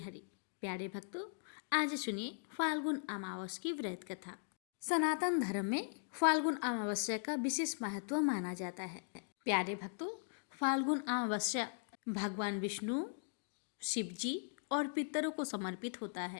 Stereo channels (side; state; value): right; silent; digital silence